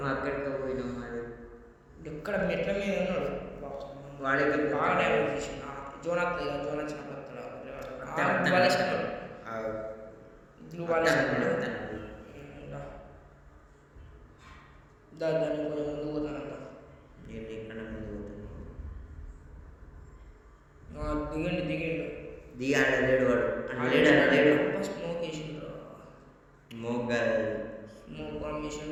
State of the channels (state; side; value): identical; both; correlation 1.00